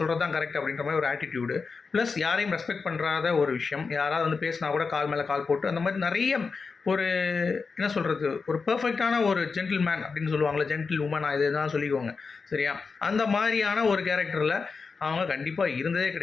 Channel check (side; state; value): right; quieter; 4.8 dB